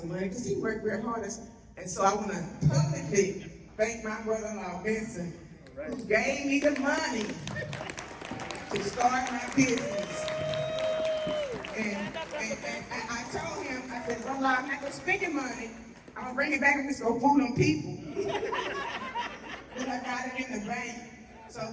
money because he worked very hard. And so I want to publicly thank my brother-in-law, Vincent, who gave me the money to start my business. And I told him, I said, brother, I'm not going to spend your money. I'm going to bring it back and just go fool on people. But I got it in the bank. So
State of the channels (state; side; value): identical; both; correlation 1.00